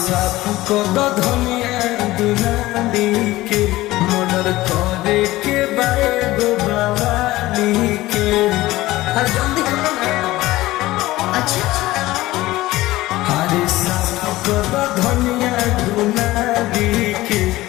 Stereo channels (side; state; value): right; quieter; 17.7 dB